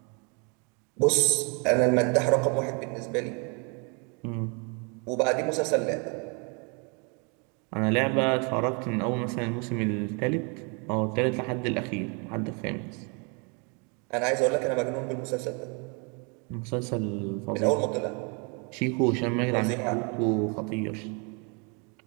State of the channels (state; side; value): quieter; left; 34.2 dB